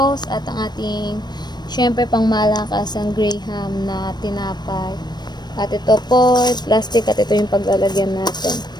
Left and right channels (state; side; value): late; right; 0.21 ms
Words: at ang ating, syempre, pang malakas ang Graham na tinapay. At ito po, plastic, at ito yung paglalagyan natin.